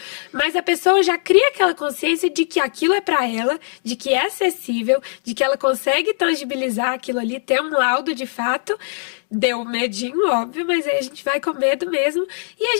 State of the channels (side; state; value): right; silent; digital silence